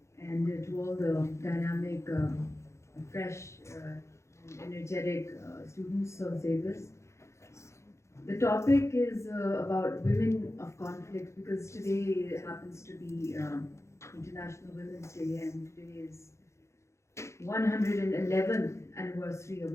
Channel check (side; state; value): right; late; 0.14 ms